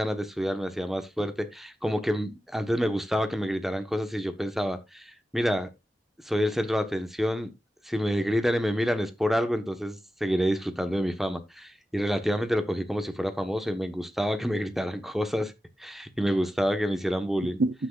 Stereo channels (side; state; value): both; normal; correlation 0.92